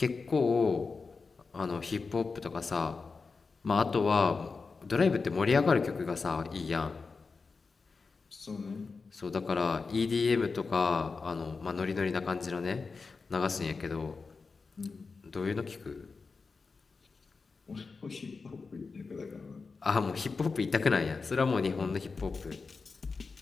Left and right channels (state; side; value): quieter; right; 4.5 dB